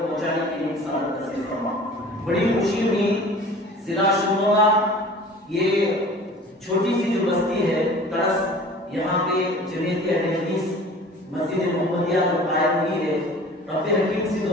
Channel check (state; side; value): normal; both; correlation 0.44